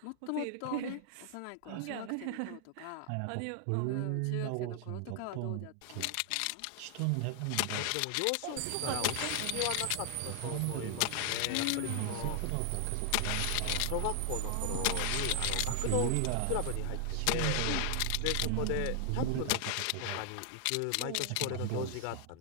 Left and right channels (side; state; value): both; different; correlation 0.00